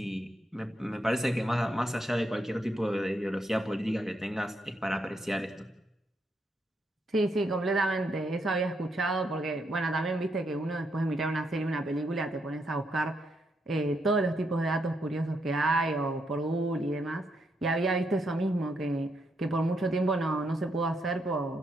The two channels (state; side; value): normal; both; correlation 0.78